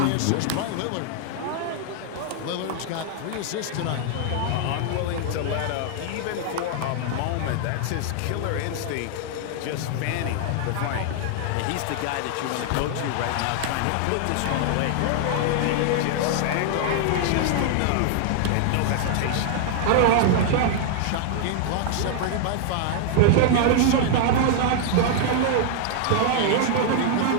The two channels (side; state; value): both; different; correlation 0.00